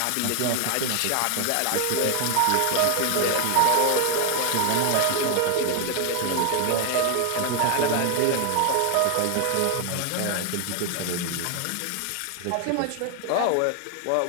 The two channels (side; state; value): both; different; correlation 0.01